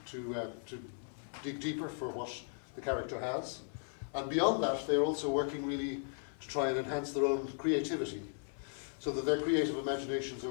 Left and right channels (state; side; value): silent; right; 53 dB below the other